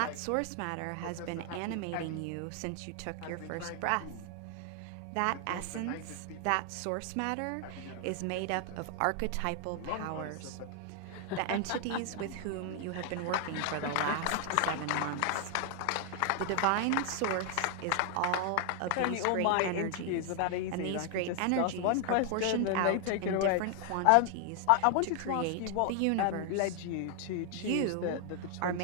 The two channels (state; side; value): different; both; correlation 0.00